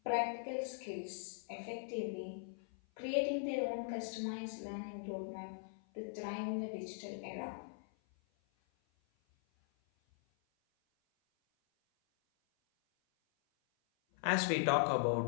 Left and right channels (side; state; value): right; silent; 51 dB below the other